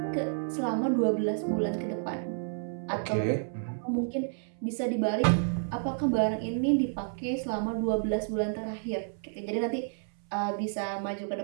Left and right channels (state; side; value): silent; left; 57 dB below the other